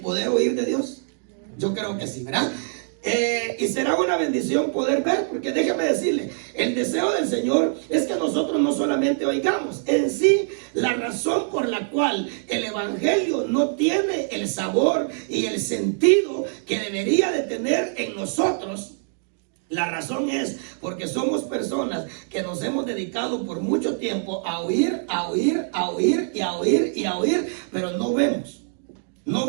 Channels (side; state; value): left; silent; digital silence